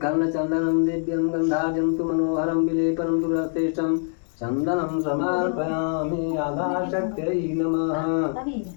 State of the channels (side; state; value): right; silent; 59 dB below the other